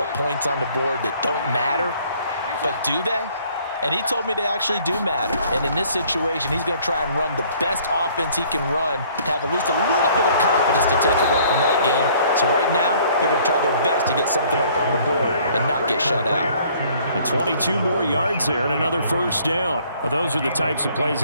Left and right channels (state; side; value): inverted; both; correlation -0.58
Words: points on the board that don't matter. But do they? And he told me they actually do matter. And in this situation, he's going to try and run the best offense he can run to have at least a little bit of confidence to take away from that game. So right now, they're going to try their best to get something up on the board and not get shut out. And 22 more yards there and another 1st down. Well, those are the types of plays